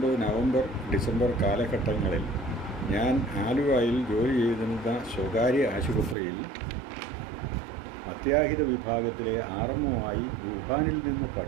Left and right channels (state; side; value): drops out; left; at 6.2 s